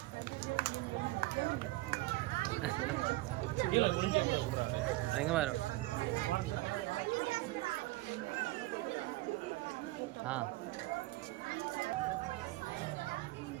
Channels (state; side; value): quieter; left; 19.6 dB